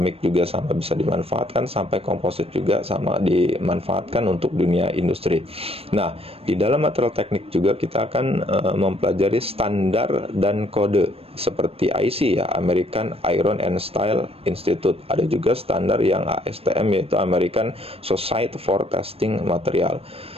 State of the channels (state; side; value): late; left; 0.28 ms